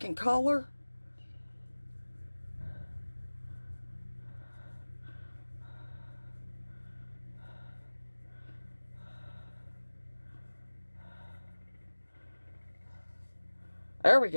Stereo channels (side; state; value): both; inverted; correlation -1.00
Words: color. There we